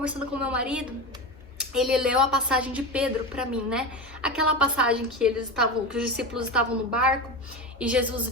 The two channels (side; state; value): both; normal; correlation 0.22